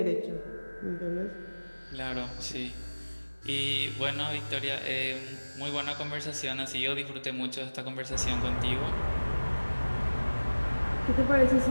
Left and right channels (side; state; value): both; inverted; correlation -1.00